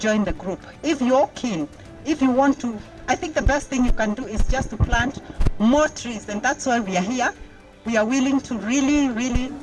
the group, if you're keen, if you want to, I think the best thing you can do is just to plant more trees, and that's why we are here. We are willing to really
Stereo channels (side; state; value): both; identical; correlation 1.00